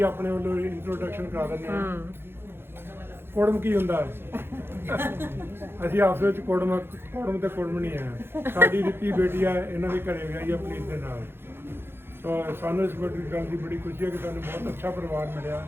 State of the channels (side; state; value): left; late; 0.11 ms